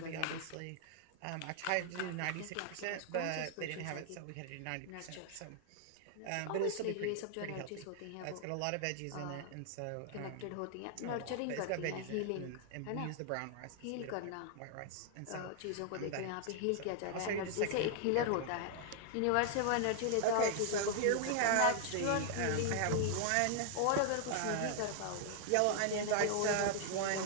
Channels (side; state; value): both; different; correlation -0.01